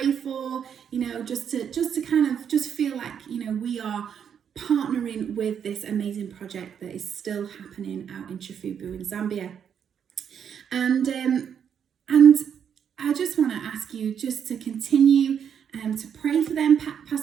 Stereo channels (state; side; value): quieter; left; 8.1 dB